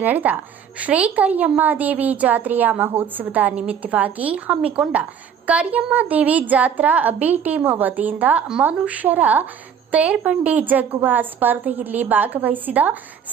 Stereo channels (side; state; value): left; quieter; 7.8 dB